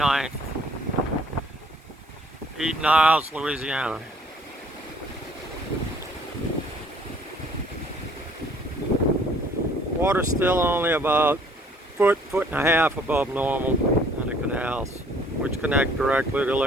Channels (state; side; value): normal; both; correlation 0.58